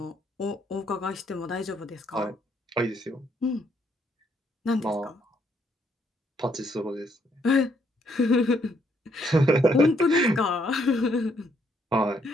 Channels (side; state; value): both; normal; correlation 0.71